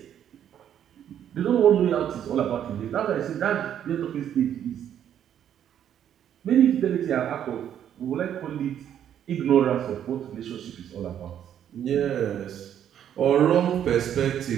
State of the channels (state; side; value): quieter; left; 9.9 dB